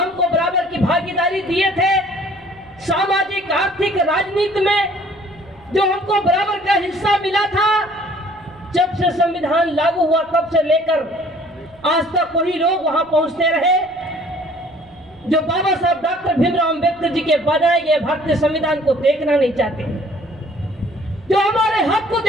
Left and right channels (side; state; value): right; noise; rumble, 29 dB below the sound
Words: बराबर की भागीदारी दिए थे, सामाजिक, आर्थिक, राजनीति में जो हमको बराबर का हिस्सा मिला था, जब से संविधान लागू हुआ तब से लेकर आज तक वही लोग वहां पहुंचते रहे जो बाबा साहब डॉक्टर भीमराव अंबेडकर जी के बनाए गए भारतीय संविधान को देखना नहीं चाहते, जो हमारे हक को